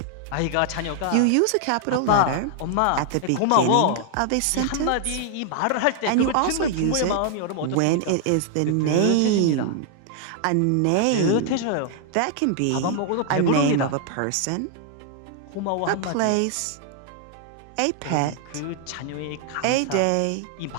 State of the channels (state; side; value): different; both; correlation 0.00